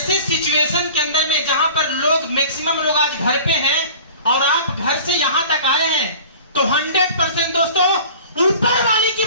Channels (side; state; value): both; inverted; correlation -0.42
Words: सिचुएशन के अंदर में जहां पर लोग मैक्सिमम लोग आज घर पे हैं और आप घर से यहां तक आए हैं, तो 100% दोस्तों ऊपर वाले की